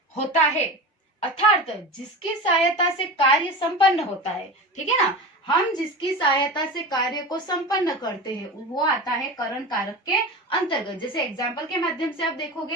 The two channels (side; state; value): both; normal; correlation 0.29